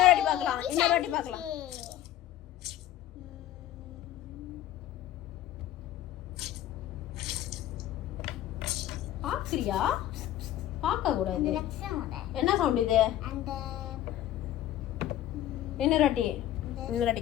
வாட்டி பார்க்கலாம், இன்னொரு வாட்டி பார்க்கலாம். பாக்குறியா? பார்க்க கூடாது. என்ன சவுண்ட் இது? இன்னொரு வாட்டி, இன்னொரு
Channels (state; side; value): quieter; right; 12.8 dB